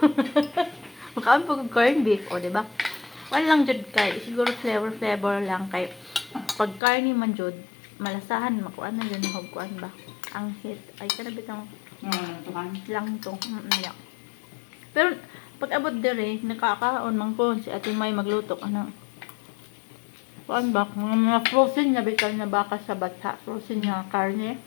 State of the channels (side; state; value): right; drops out; at 6.8 s